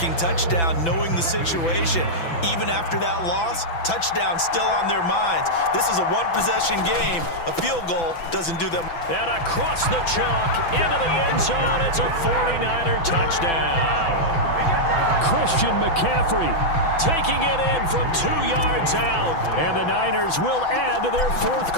touchdown, knowing the situation. Even after that loss, touchdown still on their minds. This is a one-possession game. A field goal doesn't do them. And across the chalk, into the end zone, it's a 49er touchdown. Christian McCaffrey taking it in from 2 yards out. And the Niners will add to their 4th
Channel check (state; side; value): late; right; 6.0 ms